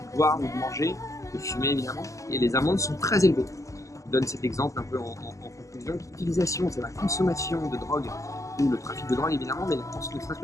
boire ou de manger, de fumer évidemment, et les amendes sont très élevées. Je donne cet exemple un peu en conclusion, l'utilisation, c'est la consommation de drogue, ou le trafic de drogue évidemment, mais ne serait-ce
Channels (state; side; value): late; right; 0.16 ms